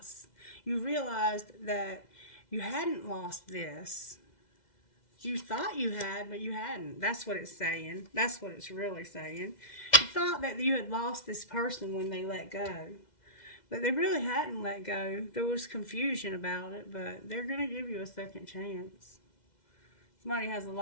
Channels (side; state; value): right; late; 2.0 ms